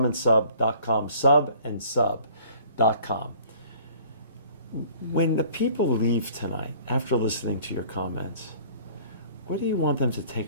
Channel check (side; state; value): both; inverted; correlation -0.53